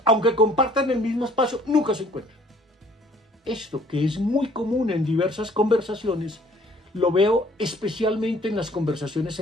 aunque compartan el mismo espacio, nunca se encuentran. Esto, que es muy común en diversas conversaciones, lo veo especialmente en las conversaciones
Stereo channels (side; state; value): both; normal; correlation 0.57